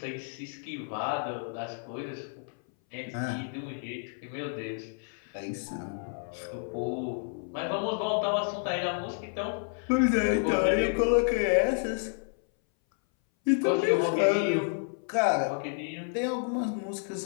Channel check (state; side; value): silent; right; 58 dB below the other